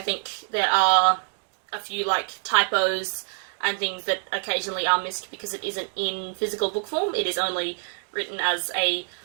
think there are a few, like, typos and things that occasionally are missed because it isn't in physical book form. It is only written as a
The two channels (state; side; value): silent; left; 61 dB below the other